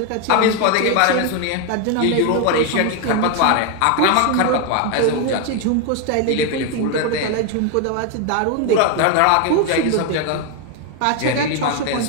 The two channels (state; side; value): different; both; correlation 0.01